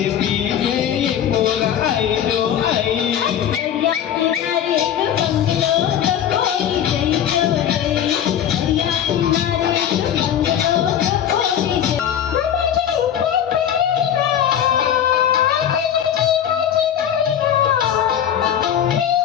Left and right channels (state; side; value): quieter; right; 9.6 dB